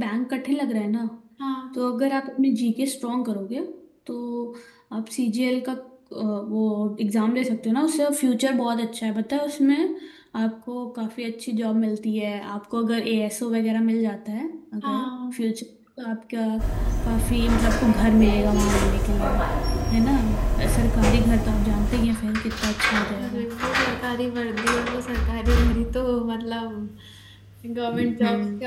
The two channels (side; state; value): both; identical; correlation 1.00